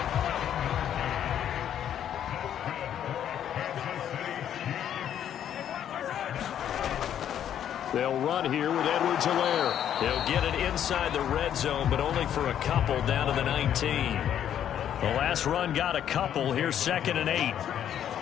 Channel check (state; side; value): quieter; right; 10.0 dB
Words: They'll run here with Edwards-Helaire. They'll get it inside the red zone, but only for a couple down to the 19. The last run got a couple. Here's 2nd and 8.